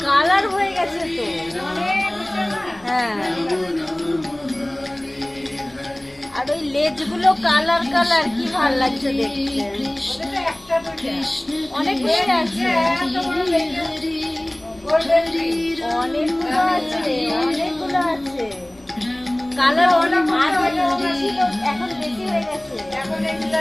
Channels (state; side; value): noise; left; hum, 30 dB below the sound